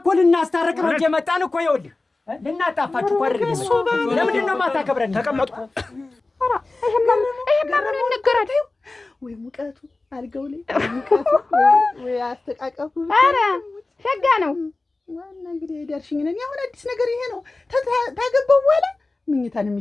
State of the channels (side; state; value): right; quieter; 3.3 dB